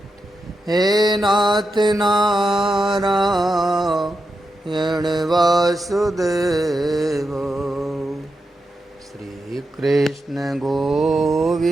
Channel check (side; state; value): both; normal; correlation 0.87